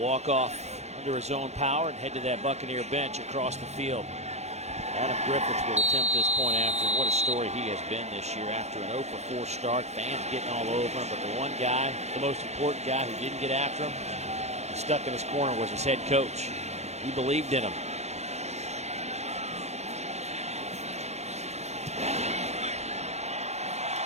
off under his own power, and head to that Buccaneer bench across the field. Adam Griffith will attempt this point after. What a story he has been this year after an 0-for-4 start. Fans getting all over him, but the one guy, the most important guy who didn't get after him, stuck in his corner, was his head coach. He believed in him.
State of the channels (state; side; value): late; left; 0.32 ms